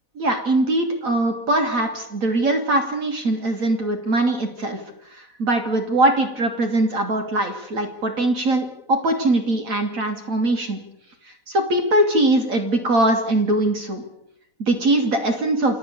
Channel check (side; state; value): left; late; 4.0 ms